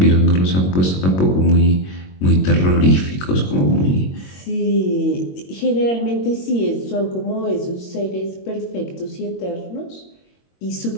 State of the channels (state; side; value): late; right; 22 ms